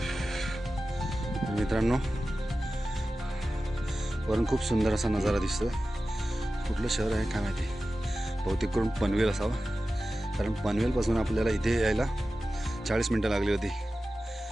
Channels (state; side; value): normal; both; correlation 0.94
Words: मित्रांनो वरून खूप सुंदर असा नजारा दिसतो. कुठलं शहर आहे काय माहिती, बहुतेक करून पनवेल असावं, कारण पनवेलपासून आपल्याला इथे यायला 40 मिनटं लागली होती.